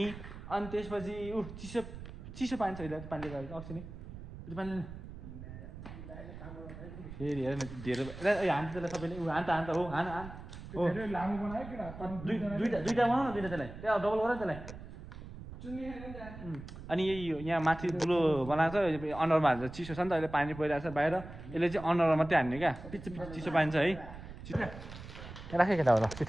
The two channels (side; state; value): right; noise; rumble, 13 dB below the sound